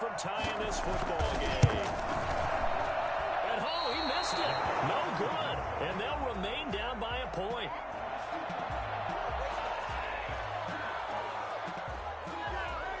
tying this football game. And he missed it. No good. And they'll remain down by a point.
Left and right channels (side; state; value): both; identical; correlation 1.00